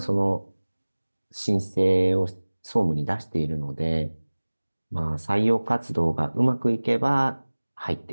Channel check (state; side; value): inverted; both; correlation -1.00